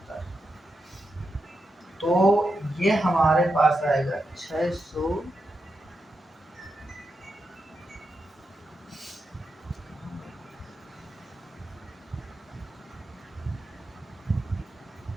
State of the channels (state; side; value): normal; both; correlation 0.87